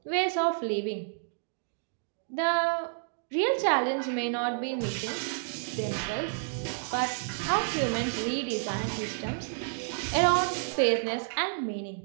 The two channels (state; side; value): silent; left; digital silence